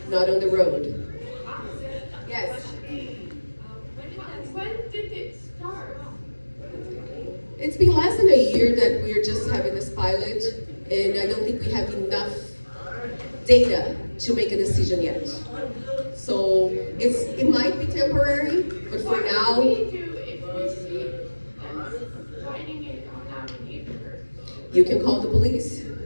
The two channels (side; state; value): both; inverted; correlation -1.00